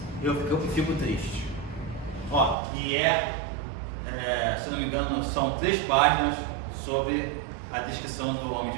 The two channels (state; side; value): drops out; left; at 2.6 s